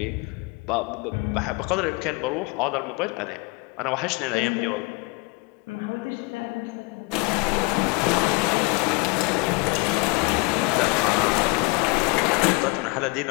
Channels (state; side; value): quieter; right; 27.6 dB